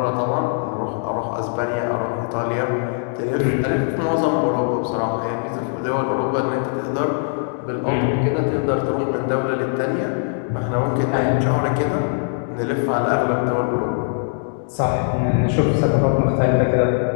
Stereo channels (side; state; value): right; silent; digital silence